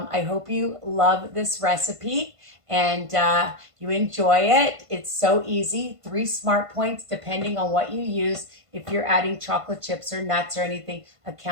hope you love this recipe and you enjoy it. It's so easy. 3 smart points depending on what you use. If you're adding chocolate chips or nuts or anything,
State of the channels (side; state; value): left; late; 1.5 ms